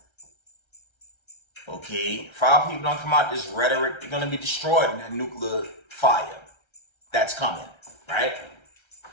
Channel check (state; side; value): late; right; 1.3 ms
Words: Okay, if our people don't come out this rhetoric, they're going to be destroyed in that nuclear fire that's coming, right?